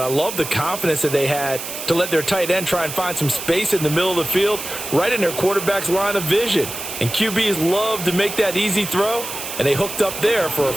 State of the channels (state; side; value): noise; right; hiss, 8 dB below the sound